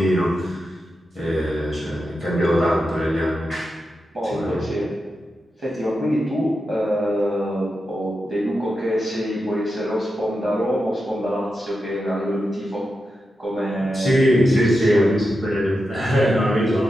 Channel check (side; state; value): both; normal; correlation 0.89